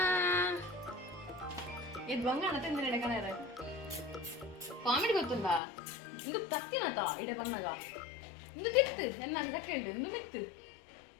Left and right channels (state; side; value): drops out; right; at 5.6 s